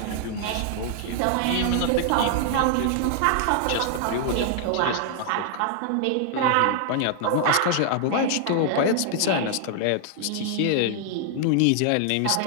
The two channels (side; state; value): both; different; correlation 0.00